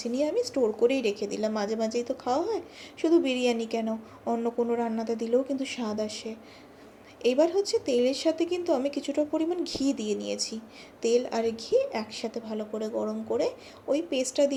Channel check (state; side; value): identical; both; correlation 1.00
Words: নিয়ে আমি স্টোর করেই রেখে দিলাম। মাঝে মাঝেই তো খাওয়া হয়, শুধু বিরিয়ানি কেন, অন্য কোনো রান্নাতে দিলেও কিন্তু স্বাদ আসে। এবার হচ্ছে তেলের সাথে কিন্তু আমি কিছুটা পরিমাণ ঘি দিয়ে নিয়েছি। তেল আর ঘি একসাথে ভালো করে গরম করে ওই পেস্টটা